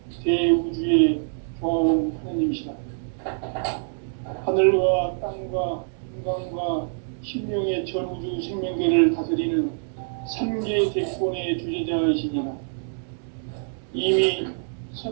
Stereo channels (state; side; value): silent; left; digital silence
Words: 대우주의 교황 하느님이시다. 하늘과 땅과 인간과 신명의 전우주 생명계를 다스리는 3개 대권의 주제자이시니라. 이미